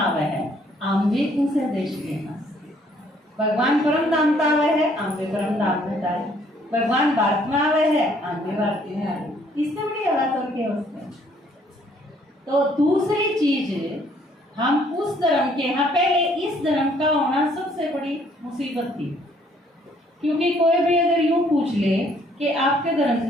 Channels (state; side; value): normal; both; correlation 0.64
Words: है आम भी उसे देश के हैं। भगवान परम धाम का आवे है, आम भी परम धाम में जाए। भगवान भारत में आवे है, आम भी भारतीय में आए। इससे बड़ी बात और क्या उसमें। तो दूसरी चीज, हम उस धर्म के यहाँ, पहले इस धर्म का होना सबसे बड़ी मुसीबत थी, क्योंकि कोई भी अगर यूं पूछ ले कि आपके धर्म